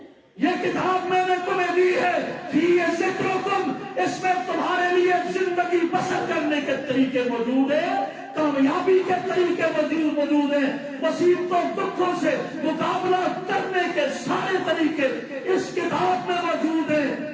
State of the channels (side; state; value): both; identical; correlation 1.00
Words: یہ کتاب میں نے تمہیں دی ہے، فیہ ذکرکم، اس میں تمہارے لیے زندگی بسر کرنے کے طریقے موجود ہیں، کامیابی کے طریقے موجود ہیں، مصیبتوں دکھوں سے مقابلہ کرنے کے سارے طریقے اس کتاب میں موجود